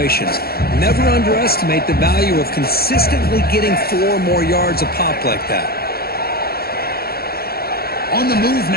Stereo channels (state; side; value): late; right; 0.45 ms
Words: Never underestimate the value of consistently getting 4 or more yards a pop like that. On the move